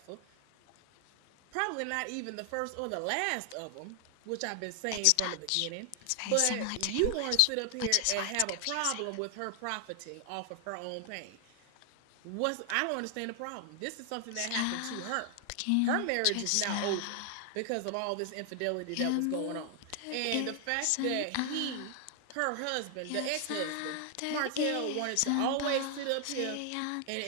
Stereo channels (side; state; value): both; different; correlation 0.00